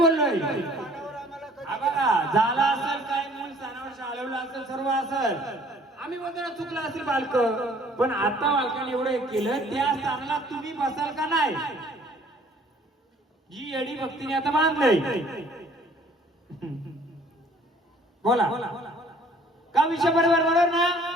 स्थानावर आम्हाला हा कधी बघा, झाला असेल काय मूळ स्थानावर शाळवलं असेल, सर्व असेल. आम्ही बोलतो चुकलं असेल बालक, पण आता बालकाने एवढं एक केलं, त्या स्थानाला तुम्ही बसाल का नाही? जी येडी भक्तीने आता बांधलंय, बोला का विषय बरोबर बरोबर ना?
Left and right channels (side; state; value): both; normal; correlation 0.56